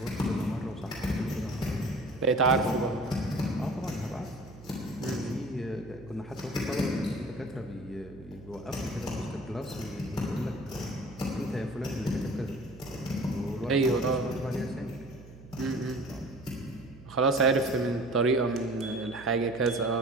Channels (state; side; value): noise; right; hum, 18 dB below the sound